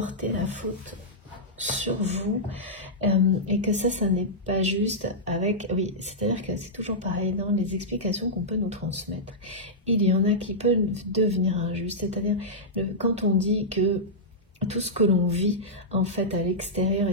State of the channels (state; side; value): normal; both; correlation -0.11